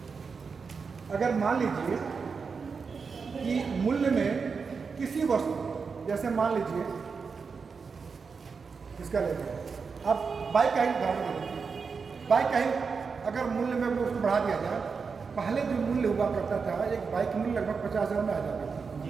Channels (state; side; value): quieter; left; 5.3 dB